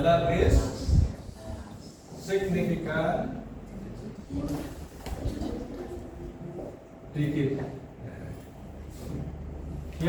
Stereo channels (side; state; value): both; identical; correlation 1.00